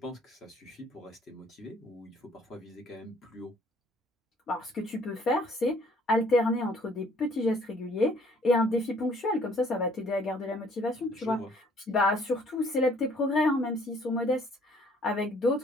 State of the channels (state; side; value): normal; both; correlation 0.60